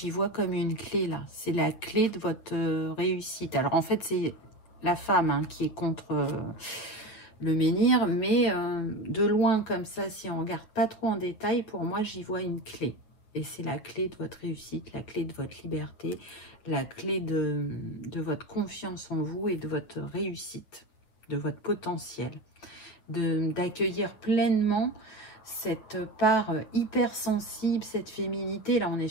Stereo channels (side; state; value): right; late; 9.3 ms